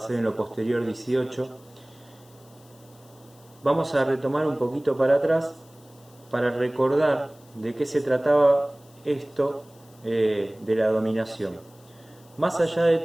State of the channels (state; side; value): noise; left; hiss, 28 dB below the sound